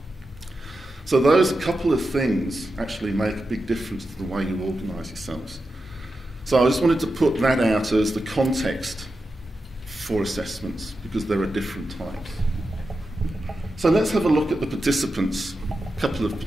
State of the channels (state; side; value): normal; both; correlation 0.90